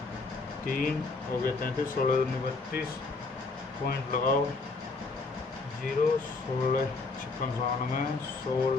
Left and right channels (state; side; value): quieter; right; 3.8 dB